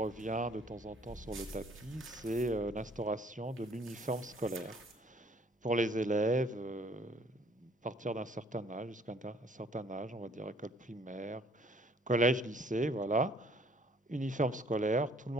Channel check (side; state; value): both; normal; correlation 0.60